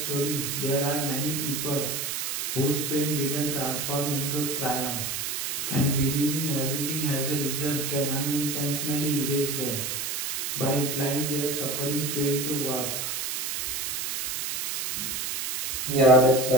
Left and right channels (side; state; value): right; noise; hiss, 2 dB below the sound